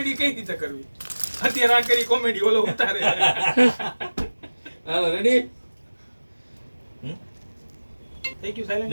કઈ રીતે કરવી અત્યારે આ કરી કોમેડી ઓલો ઉતારે હાલો રેડી. થઈ ગયું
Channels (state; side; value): inverted; both; correlation -1.00